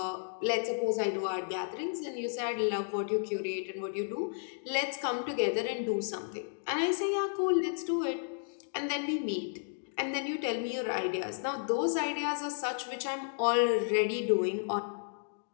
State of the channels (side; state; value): right; silent; digital silence